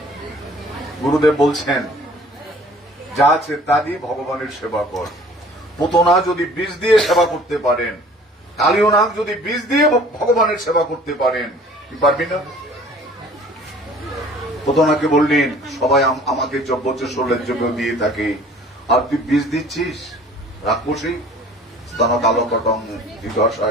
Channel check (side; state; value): both; normal; correlation 0.50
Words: গুরুদেব বলছেন, যা আছে তা দিয়ে ভগবানের সেবা কর। পুতনা যদি বীজ দিয়ে সেবা করতে পারেন, কালীয় নাগ যদি বীজ দিয়ে ভগবানের সেবা করতে পারেন, কি পারবি না? পুতনাকে বললেন, সবাই আমাকে যজ্ঞচেশ্বরের জন্য দিয়ে থাকে, আর তুই বীজ দিচ্ছিস রাক্ষসী স্তন কালকটং